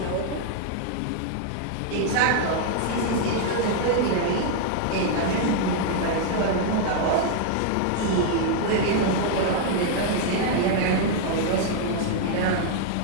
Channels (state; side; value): different; both; correlation 0.00